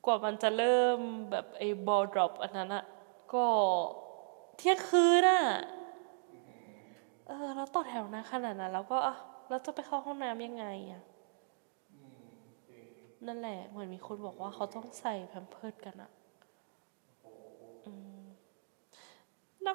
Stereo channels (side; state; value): left; silent; digital silence